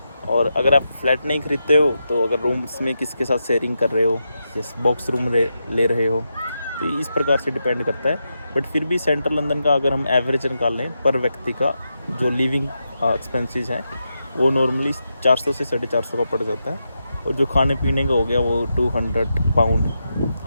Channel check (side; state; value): both; inverted; correlation -0.86